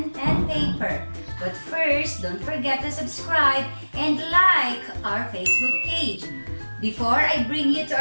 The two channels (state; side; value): inverted; both; correlation -1.00